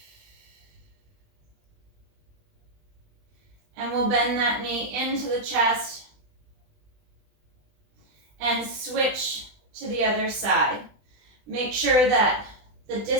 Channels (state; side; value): late; left; 20 ms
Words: And we'll bend that knee into the chest and switch to the other side. Make sure that the